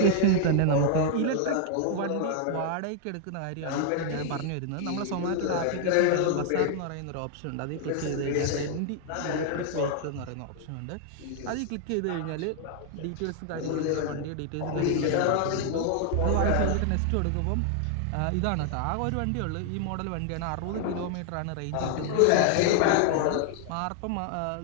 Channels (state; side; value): different; both; correlation 0.00